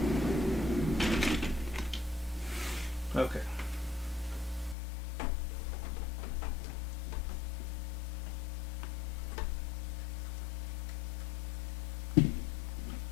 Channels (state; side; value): drops out; right; at 4.8 s